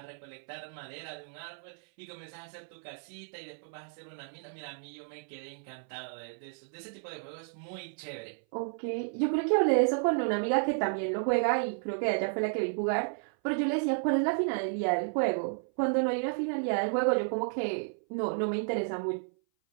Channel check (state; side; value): silent; left; 56 dB below the other